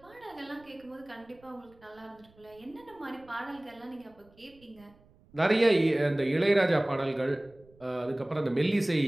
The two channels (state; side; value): noise; right; rumble, 28 dB below the sound